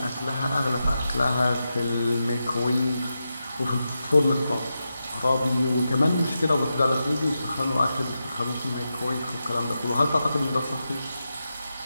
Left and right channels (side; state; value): both; inverted; correlation -0.89